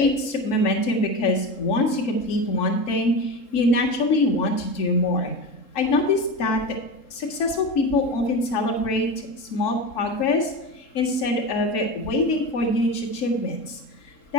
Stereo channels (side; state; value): right; late; 3.7 ms